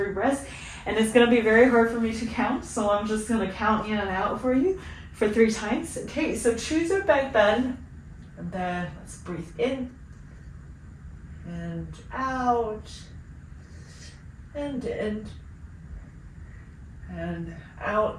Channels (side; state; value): both; identical; correlation 1.00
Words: breaths, and it's gonna be very hard for me to count, so I'm just gonna count in and out for you for 3 times. Okay, so choose your back bend, and then let's breathe in, and out, and in, and